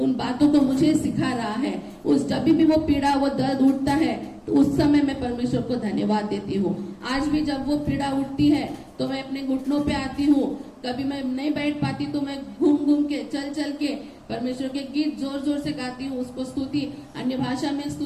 बातों को मुझे सिखा रहा है। जब भी वो पीड़ा, वो दर्द उठता है, तो उस समय मैं परमेश्वर को धन्यवाद देती हूँ। आज भी जब वो पीड़ा उठती है तो मैं अपने घुटनों पे आती हूँ। कभी मैं नहीं बैठ पाती तो मैं घूम के, चल के परमेश्वर के गीत जोर जोर से गाती हूँ, उसको स्तुति, अन्य भाषा में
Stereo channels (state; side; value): identical; both; correlation 1.00